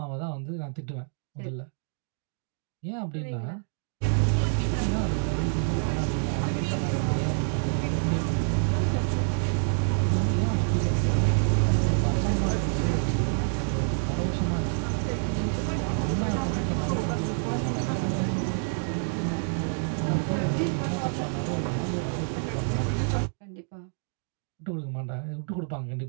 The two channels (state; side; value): silent; left; 60 dB below the other